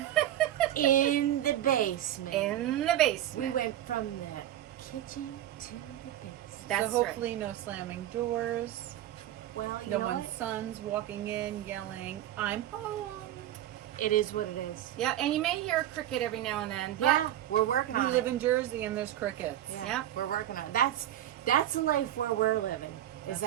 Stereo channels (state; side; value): quieter; left; 12.4 dB